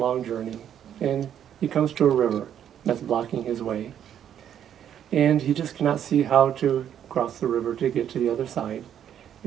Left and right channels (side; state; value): left; quieter; 9.7 dB